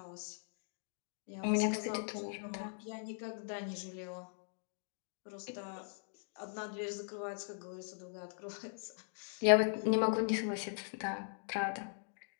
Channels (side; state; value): right; silent; digital silence